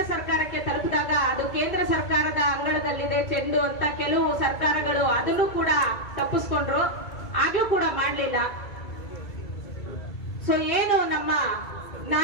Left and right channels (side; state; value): right; late; 2.3 ms